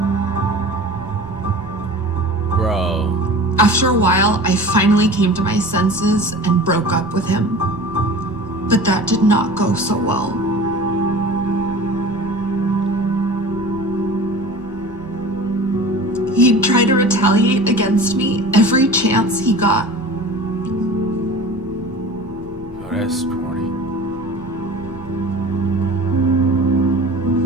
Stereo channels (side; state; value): right; noise; hum, 26 dB below the sound